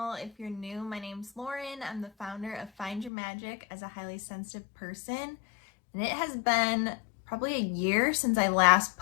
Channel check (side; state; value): right; drops out; at 3.1 s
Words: If you're new, my name's Lauren. I'm the founder of Find Your Magic as a highly sensitive person, and it has been probably a year since I last